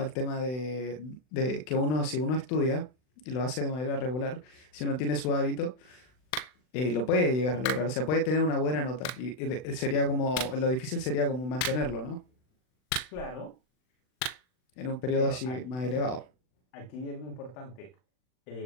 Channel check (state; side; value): late; right; 39 ms